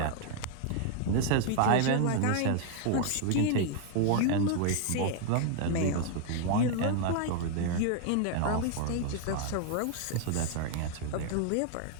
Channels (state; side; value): different; both; correlation 0.00